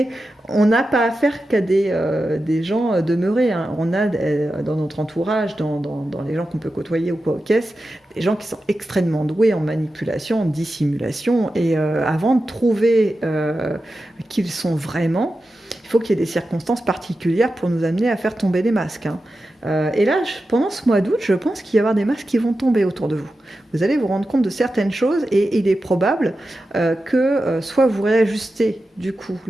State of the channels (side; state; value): both; normal; correlation 0.92